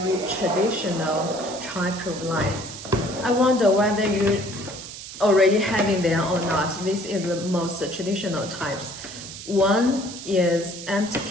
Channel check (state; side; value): noise; right; hiss, 12 dB below the sound